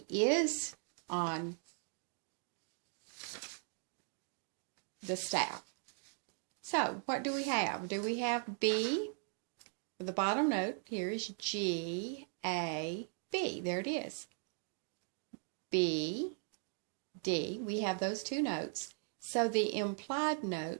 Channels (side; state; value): left; silent; 52 dB below the other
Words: is on the staff. So what do we have? Do we have B? The bottom note here is G, A, B. There it is. B, D. We have those two notes. So the implied